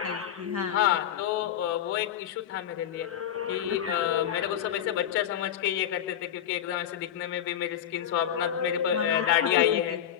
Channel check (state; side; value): quieter; right; 10.1 dB